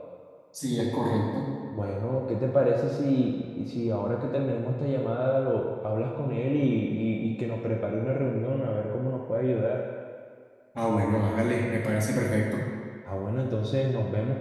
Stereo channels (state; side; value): identical; both; correlation 1.00